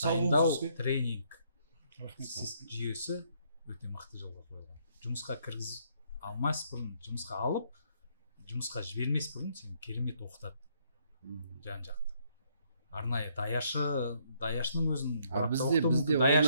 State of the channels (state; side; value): inverted; both; correlation -0.70